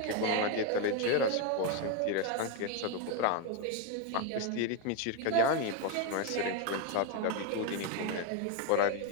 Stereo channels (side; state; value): both; different; correlation 0.02